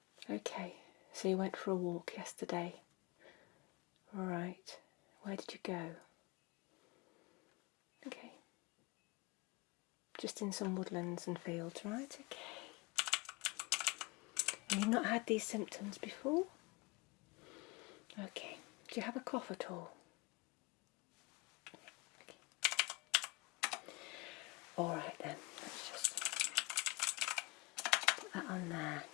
Okay, so you went for a walk yesterday. Right, where did you go? Okay, just in some woodlands and fields, right? Okay. And you've not had these symptoms before? Okay, do you have a cough at all? Alright then, let's just put that on there.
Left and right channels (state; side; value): quieter; right; 25.0 dB